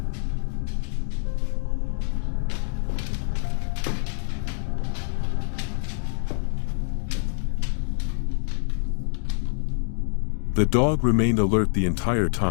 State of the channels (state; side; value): silent; right; digital silence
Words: The dog remained alert the entire